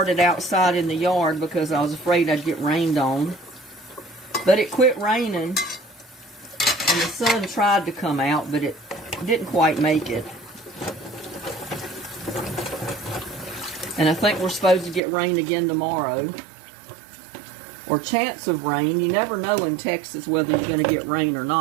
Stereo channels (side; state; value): left; drops out; at 15.0 s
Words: outside in the yard because I was afraid I'd get rained on. But it quit raining, and the sun tried to come out, but it didn't quite make it. And I think we're supposed to get rain again tomorrow. Or chance of rain. You never know in Texas whether you're going to get rain or